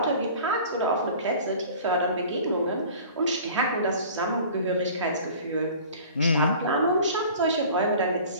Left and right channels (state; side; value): inverted; both; correlation -0.44